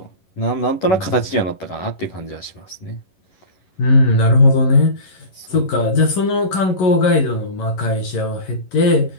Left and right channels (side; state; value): right; late; 11 ms